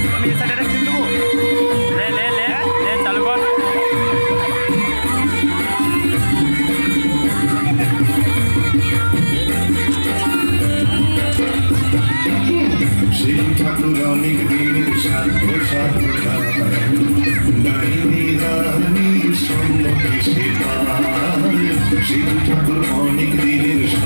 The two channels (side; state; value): both; inverted; correlation -1.00